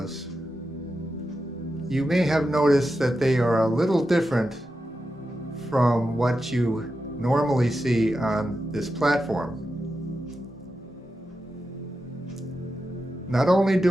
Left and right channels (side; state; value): both; normal; correlation 0.89